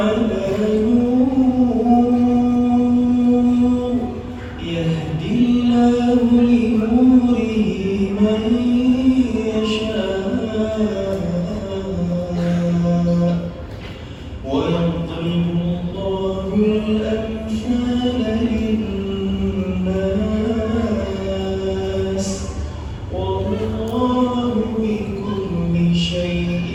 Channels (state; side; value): identical; both; correlation 1.00